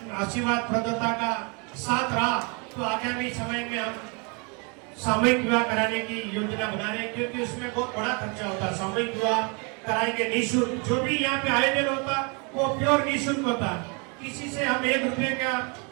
आशीर्वाद प्रदाता का साथ रहा तो आगामी समय में हम सामूहिक विवाह कराने की योजना बना रहे हैं, क्योंकि उसमें बहुत बड़ा खर्चा होता है। सामूहिक विवाह कराएंगे निःशुल्क, जो भी यहाँ पे आयोजन होता वो प्योर निःशुल्क होता। किसी से हम 1 रुपये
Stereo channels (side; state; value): left; quieter; 33.2 dB